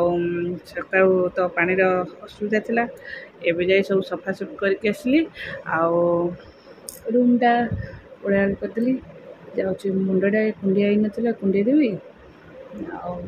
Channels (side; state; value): both; identical; correlation 1.00